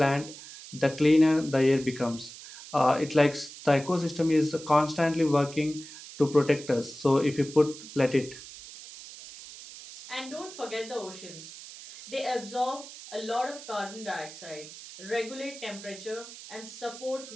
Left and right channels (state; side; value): noise; right; hiss, 15 dB below the sound